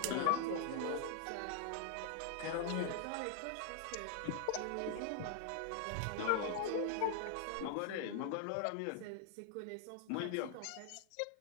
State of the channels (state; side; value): different; both; correlation 0.00